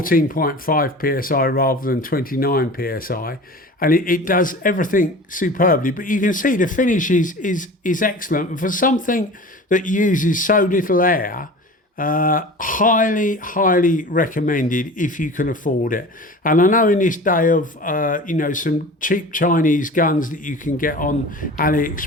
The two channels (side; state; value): both; normal; correlation 0.38